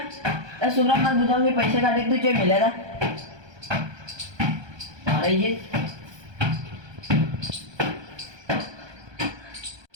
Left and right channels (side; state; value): left; late; 1.2 ms